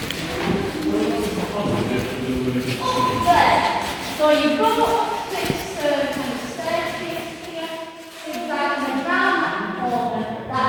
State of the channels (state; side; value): identical; both; correlation 1.00